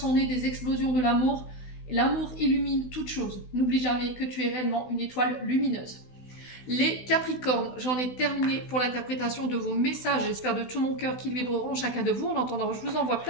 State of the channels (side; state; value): right; late; 16 ms